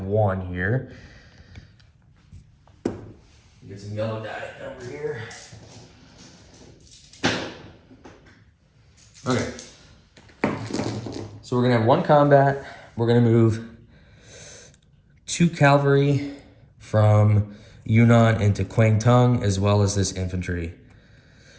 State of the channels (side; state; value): both; identical; correlation 1.00